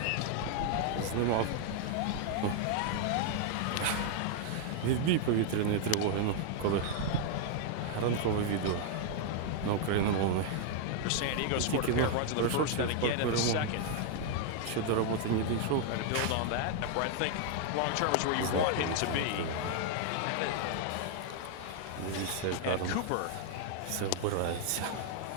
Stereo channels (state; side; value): different; both; correlation 0.00